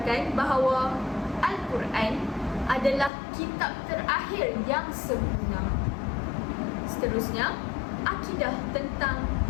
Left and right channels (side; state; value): right; drops out; at 3.1 s